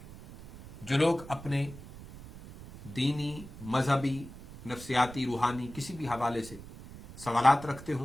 جو لوگ اپنے دینی، مذہبی، نفسیاتی، روحانی کسی بھی حوالے سے سوالات رکھتے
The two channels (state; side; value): noise; right; rumble, 15 dB below the sound